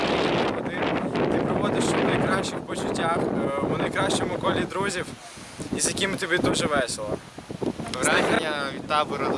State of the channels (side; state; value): both; identical; correlation 1.00